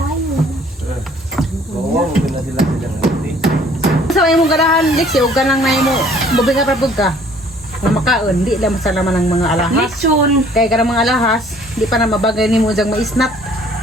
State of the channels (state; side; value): normal; both; correlation 0.56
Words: Oo, hindi na sila silang hati. Sa imong ganahan, Lexi, huwag ka lang na mo. Bubinga pa pagka. Kung makaon, di lang masalaman ng mga alahas. Lechon. Kaya ka ng mga alahas, di pa na mabagay ni mo diyang maisnap.